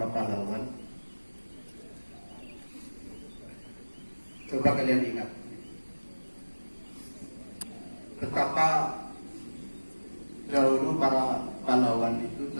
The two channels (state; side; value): inverted; both; correlation -1.00